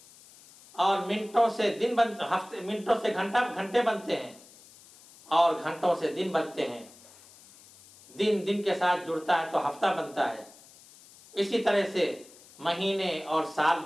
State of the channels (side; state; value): left; noise; hiss, 23 dB below the sound